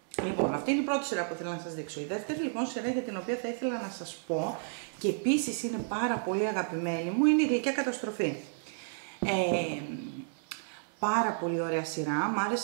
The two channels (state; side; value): silent; left; digital silence